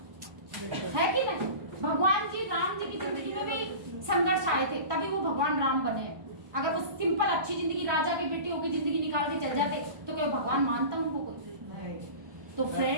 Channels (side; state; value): left; late; 1.2 ms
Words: है कि नहीं। भगवान जी राम जी की जिंदगी में भी संघर्ष आए थे, तभी वो भगवान राम बने। अगर वो सिंपल अच्छी जिंदगी, राजा के बेटे होकर जिंदगी निकाल के चल जाते तो क्या भगवान मानता उनको कोई। तो